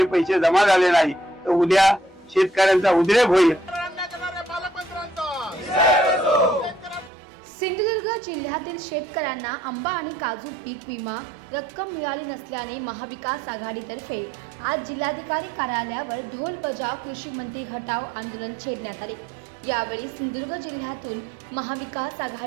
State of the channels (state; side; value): drops out; left; at 7.1 s